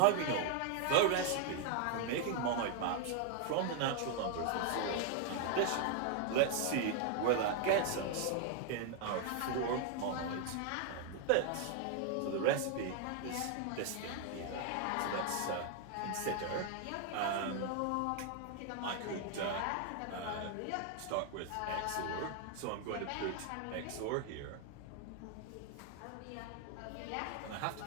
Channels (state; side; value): different; both; correlation 0.00